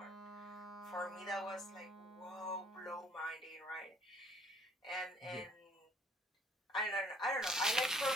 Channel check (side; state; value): both; normal; correlation 0.59